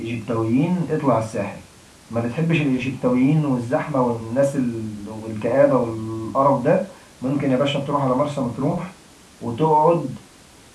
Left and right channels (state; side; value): identical; both; correlation 1.00